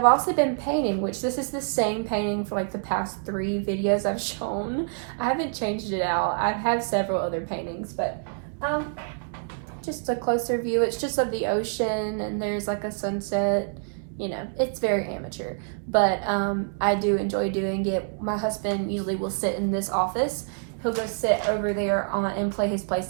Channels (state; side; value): silent; left; 61 dB below the other